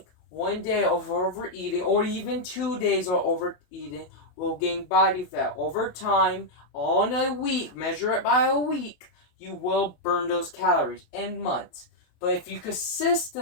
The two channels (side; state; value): right; late; 28 ms